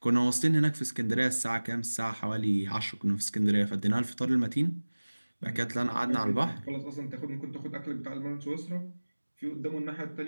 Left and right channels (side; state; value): both; inverted; correlation -1.00